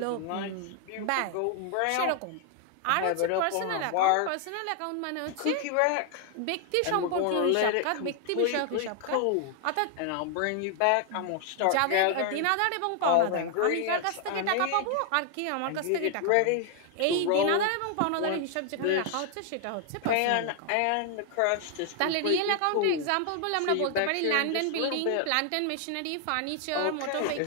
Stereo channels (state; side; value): different; both; correlation 0.00